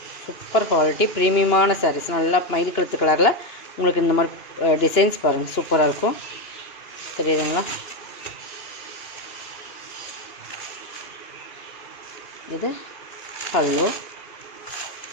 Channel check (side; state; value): right; late; 2.8 ms